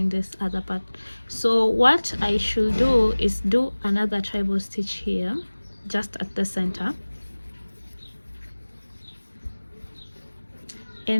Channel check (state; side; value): inverted; both; correlation -1.00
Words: this other part. So what I should do is do another treble stitch here, just at the center.